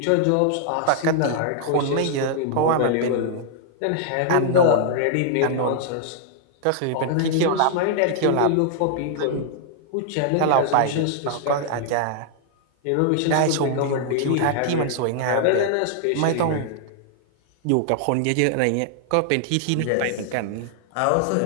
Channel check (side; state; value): both; different; correlation 0.00